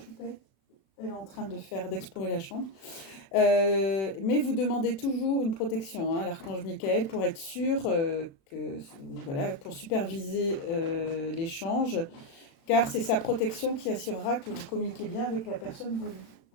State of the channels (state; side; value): late; right; 36 ms